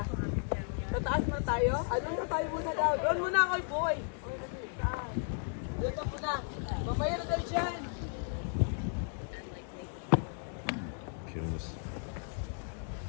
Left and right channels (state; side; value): silent; right; 55 dB below the other